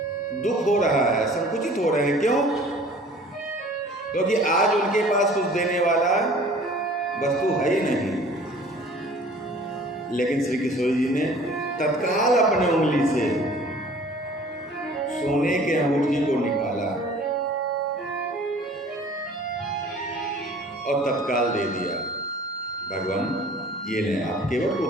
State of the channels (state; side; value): normal; both; correlation 0.49